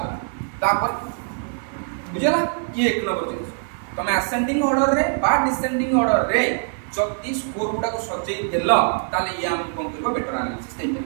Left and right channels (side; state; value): left; silent; 63 dB below the other